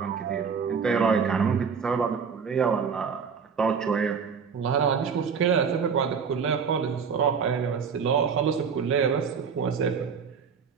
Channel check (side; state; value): left; quieter; 6.2 dB